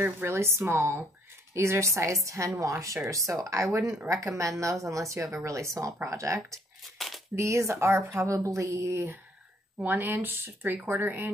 really small. These are size 10 washers. So I wouldn't recommend those unless you have a really small project. These are probably 1 inch, 3/4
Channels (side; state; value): both; normal; correlation 0.64